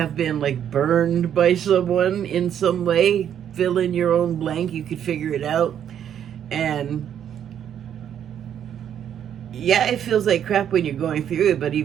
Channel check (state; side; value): quieter; left; 9.4 dB